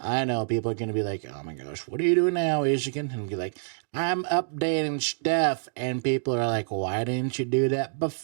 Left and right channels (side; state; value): left; silent; digital silence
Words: know people are going to be like, oh my gosh, what are you doing now, Ishikin? And be like, I'm updating stuff. And people are like, why didn't you do that